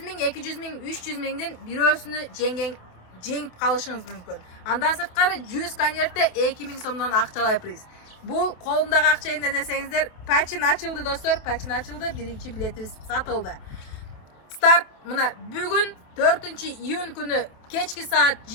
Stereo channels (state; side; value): late; right; 28 ms